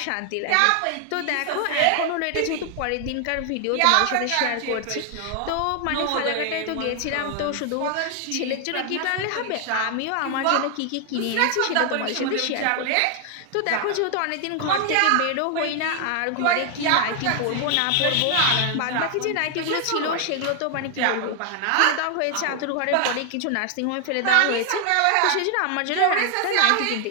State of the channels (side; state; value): both; different; correlation 0.00